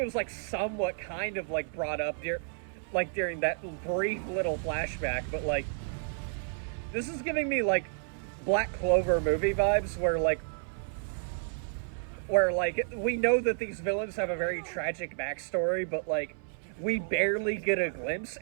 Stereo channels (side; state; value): left; silent; 57 dB below the other